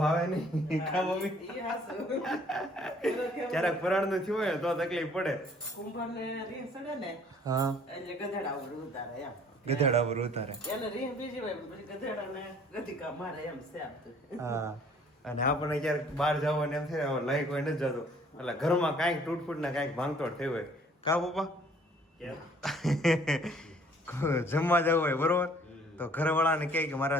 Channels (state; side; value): normal; both; correlation 0.57